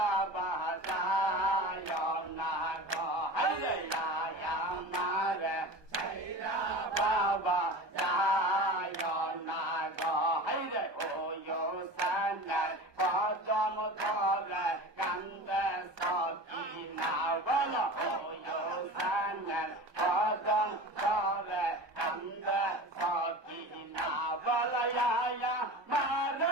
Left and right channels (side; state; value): left; late; 1.3 ms